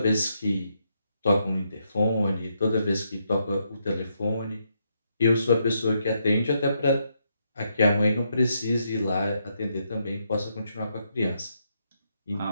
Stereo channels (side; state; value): both; inverted; correlation -0.78